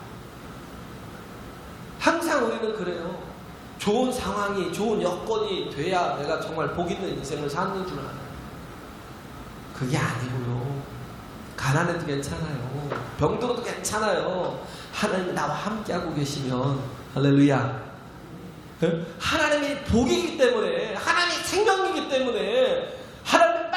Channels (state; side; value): identical; both; correlation 1.00